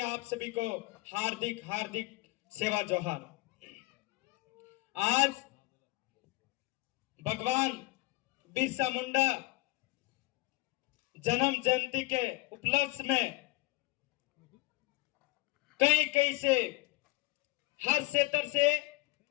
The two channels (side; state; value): right; quieter; 21.7 dB